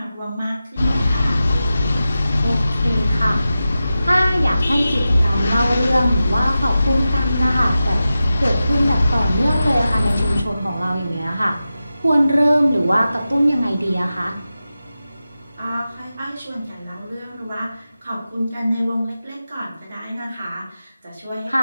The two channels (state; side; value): inverted; both; correlation -0.93